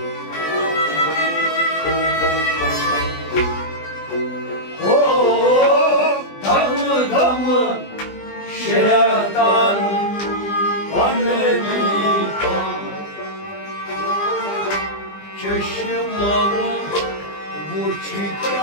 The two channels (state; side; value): late; right; 20 ms